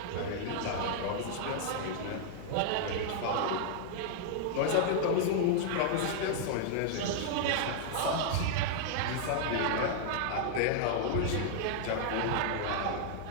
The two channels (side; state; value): both; different; correlation -0.01